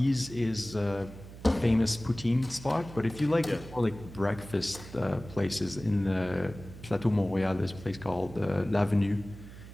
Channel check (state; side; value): noise; right; hum, 15 dB below the sound